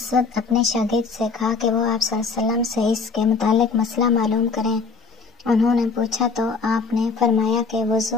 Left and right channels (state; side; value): quieter; right; 4.7 dB